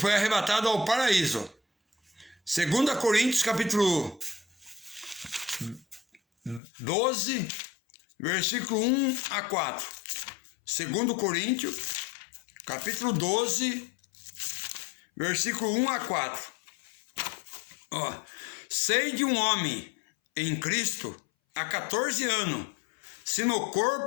arrebatado ao paraíso. 2 Coríntios, capítulo 12, versículo 1 a 4. 2 Coríntios, capítulo 12, versículo 1 a 4. Sei de um homem em Cristo há 14 anos, se no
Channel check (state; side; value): drops out; right; at 6.6 s